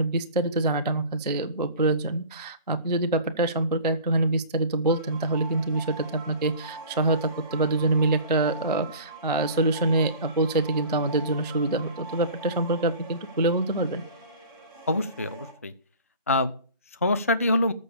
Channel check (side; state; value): both; inverted; correlation -0.42